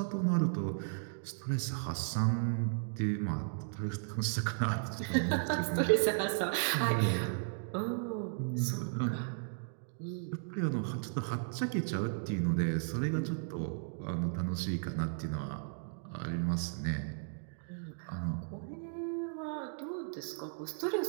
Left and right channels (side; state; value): left; silent; digital silence